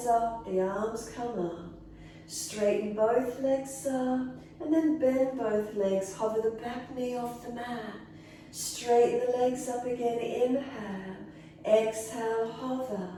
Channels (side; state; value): both; identical; correlation 1.00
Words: up, the arms come up. Straighten both legs up, and then bend both legs. Hover the back knee off the mat. Straighten the legs up again, inhale. Exhale, hover.